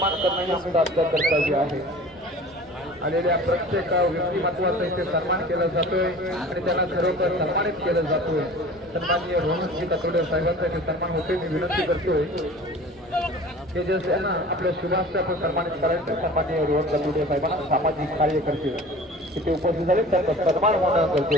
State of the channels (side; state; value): both; normal; correlation 0.42